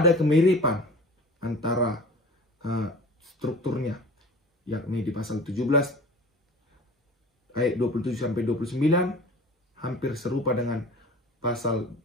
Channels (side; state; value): both; normal; correlation 0.41